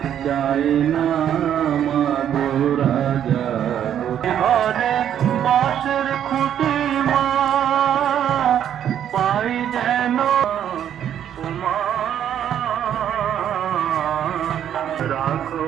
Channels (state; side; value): quieter; left; 9.9 dB